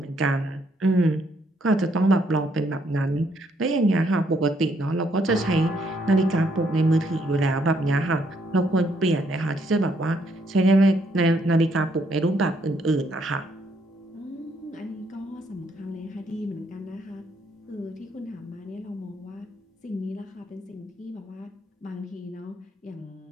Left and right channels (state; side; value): normal; both; correlation 0.71